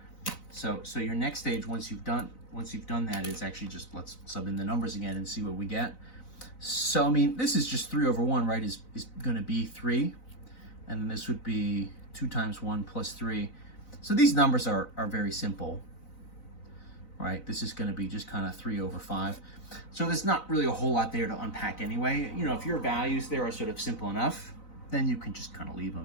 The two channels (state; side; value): late; right; 4.0 ms